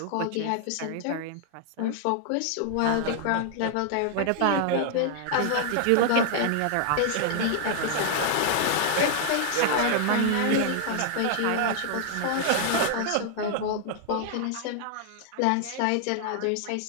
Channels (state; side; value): different; both; correlation 0.00